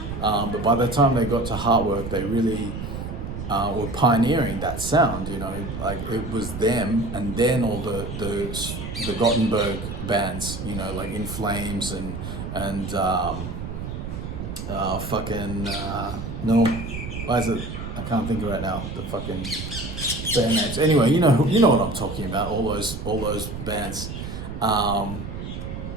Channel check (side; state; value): right; noise; rumble, 7 dB below the sound